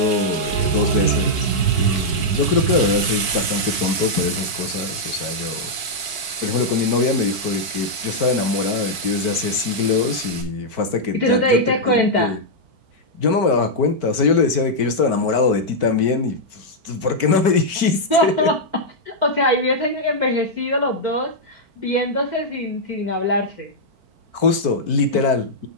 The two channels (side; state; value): left; late; 4.5 ms